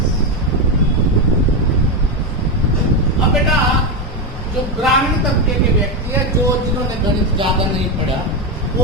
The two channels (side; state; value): both; normal; correlation 0.10